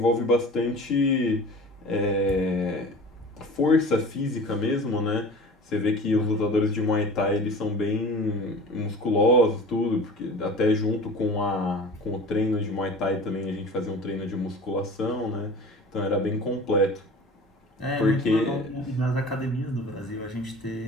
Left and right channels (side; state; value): both; normal; correlation 0.40